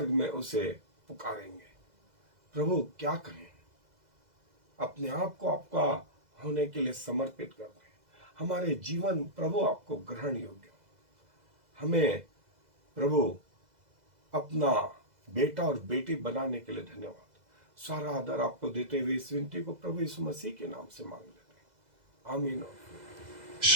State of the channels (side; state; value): left; late; 2.0 ms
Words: में उसे पुकारेंगे। प्रभु क्या कहें, अपने आप को आपका होने के लिए समर्पित कर दें। हमारे जीवन प्रभु आपको ग्रहण योग्य हो। हमें प्रभु अपना बेटा और बेटी बनाने के लिए धन्यवाद। सारा आदर आपको देते हुए इस विनती को प्रभु यीशु मसीह के नाम से मांग लेते हैं, आमीन।